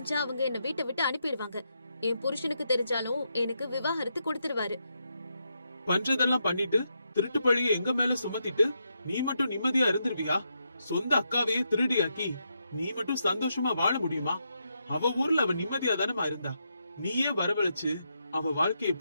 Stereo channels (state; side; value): inverted; both; correlation -0.82